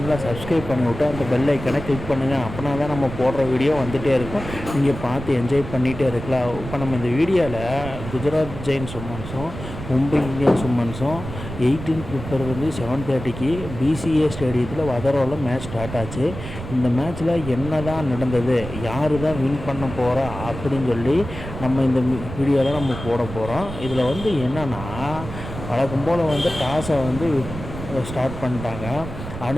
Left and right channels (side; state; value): right; noise; rumble, 10 dB below the sound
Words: சப்ஸ்கிரைப் பண்ணிவிட்டு அந்த பெல் ஐக்கனை கிளிக் பண்ணுங்கள். அப்படின்னா தான் நம்ம போடுற வீடியோ வந்துகிட்டே இருக்கும், நீங்கள் பார்த்து என்ஜாய் பண்ணிகிட்டே இருக்கலாம். இப்போ நம்ம இந்த வீடியோவில் குஜராத் ஜெயின்ஸ் உமன்ஸும் மும்பை இந்தியன்ஸ் உமன்ஸும் 18 பிப்ரவரி 7:30 பிசிஏ ஸ்டேடியத்தில் வதரோவில் மேட்ச் ஸ்டார்ட் ஆச்சு. இந்த மேட்ச்சில் என்ன தான் நடந்தது, யார் தான் வின் பண்ண போகிறா அப்படின்னு சொல்லி நம்ம இந்த வீடியோவில் நம்ம போட போகிறோம். இதில் என்னென்னா, வழக்கம் போல் டாஸை ஸ்டார்ட் பண்ணிட்டாங்க.